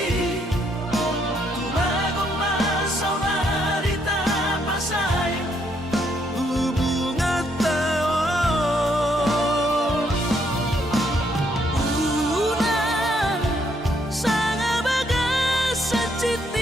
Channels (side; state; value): both; normal; correlation 0.72